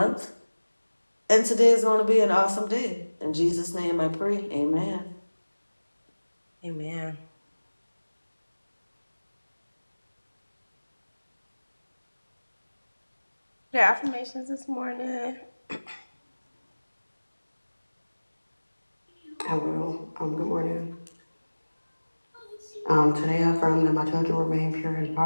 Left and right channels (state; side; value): inverted; both; correlation -1.00